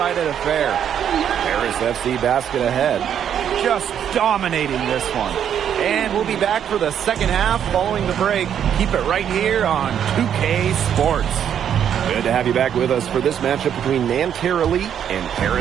affair. Paris FC basket ahead. Just dominating this one. And we'll be back for the second half following the break. Keep it right here on 2K Sports. Good to have you back with us for this matchup between Nanterre Elite and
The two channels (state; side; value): quieter; left; 9.1 dB